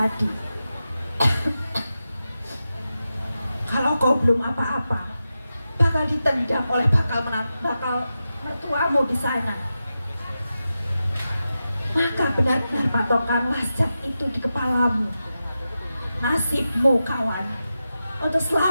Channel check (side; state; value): both; inverted; correlation -0.91